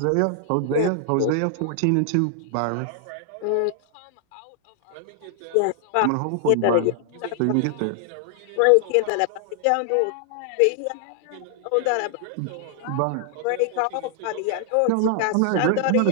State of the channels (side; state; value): both; different; correlation 0.00